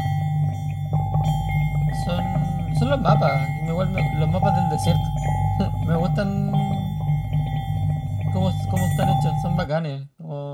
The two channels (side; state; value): both; identical; correlation 1.00